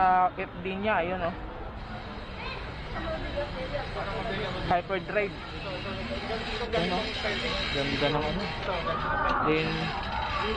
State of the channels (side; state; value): both; identical; correlation 1.00